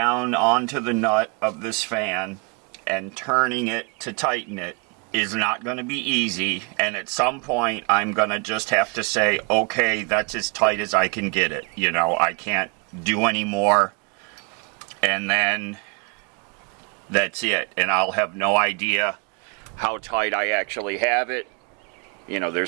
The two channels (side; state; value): left; quieter; 33.5 dB